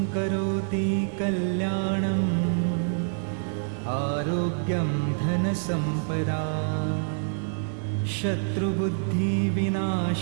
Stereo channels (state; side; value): silent; left; 60 dB below the other